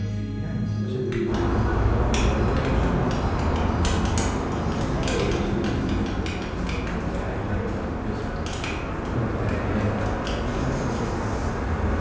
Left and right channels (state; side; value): identical; both; correlation 1.00